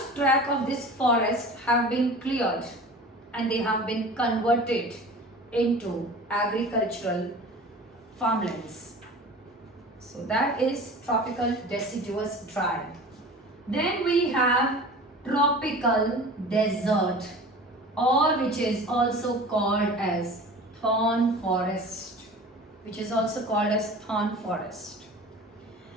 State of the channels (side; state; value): both; normal; correlation 0.39